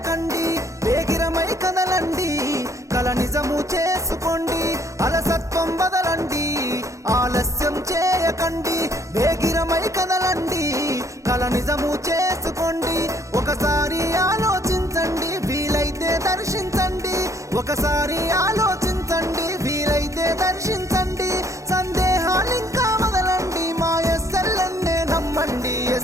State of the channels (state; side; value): late; left; 0.15 ms